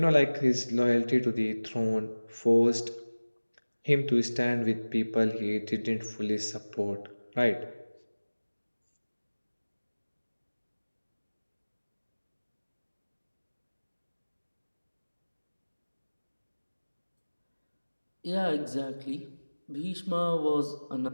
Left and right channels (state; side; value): inverted; both; correlation -1.00